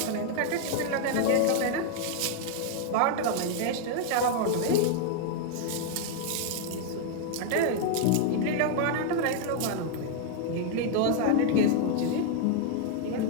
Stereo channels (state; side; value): different; both; correlation 0.00